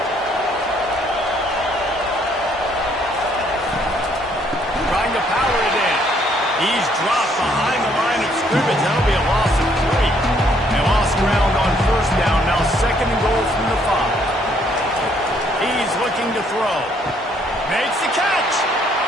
Trying to power it in. He's dropped behind the line of scrimmage. That'll be a loss of 3. They lost ground on first down. Now second and goal from the 5. He's looking to throw. Makes the catch.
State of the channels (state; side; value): normal; both; correlation 0.67